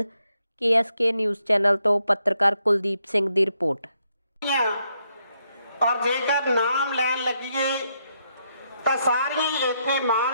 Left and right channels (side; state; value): both; inverted; correlation -0.78